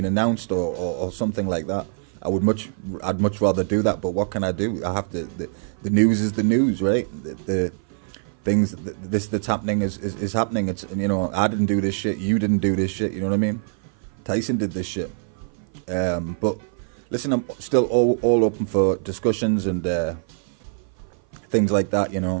announced, or something like that. I'd much rather do that. But what can I do? I have to. The news is the news, right? The things that's happening is happening. It's, you know, I didn't do this shit. You didn't do this shit. You know what I mean? Tyson did this shit. But listen, I'm still all open for discussions and things like that. You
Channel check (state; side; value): silent; left; 56 dB below the other